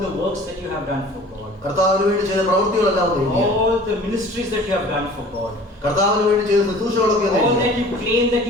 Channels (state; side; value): normal; both; correlation 0.46